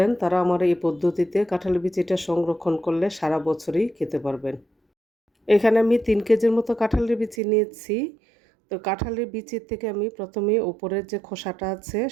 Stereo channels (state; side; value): drops out; left; at 7.4 s